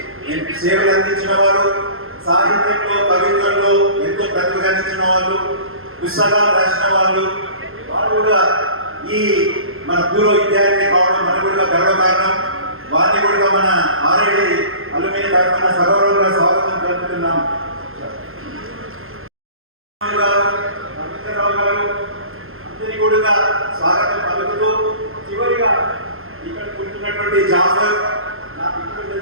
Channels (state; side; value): late; left; 0.61 ms